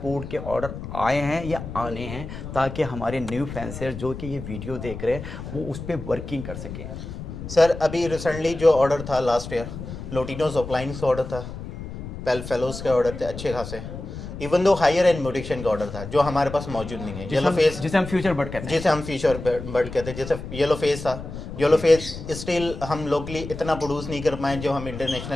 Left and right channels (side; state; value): left; noise; rumble, 10 dB below the sound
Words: के ऑर्डर आए हैं या आने हैं, ताकि हमारे न्यू फेंसर जो कि ये वीडियो देख रहे हैं वो उस पर वर्किंग कर सकें। सर अभी रिसेंटली जो ऑर्डर था लास्ट ईयर, लोटिनोज अपलाइन का ऑर्डर था, पेल फेलोज के ऑर्डर थे अच्छे खासे, even though higher and mutation का ऑर्डर था जो हमारे पास मौजूद नहीं है। येलो फेस, जिसे हम फ्यूचर बर्ड कहते हैं, जिसे हम फ्यूचर बर्ड कहते हैं, जैसे येलो फेस था, येलो फेस स्टिल हम लोकली इतना प्रोड्यूस नहीं कर पाए जो हम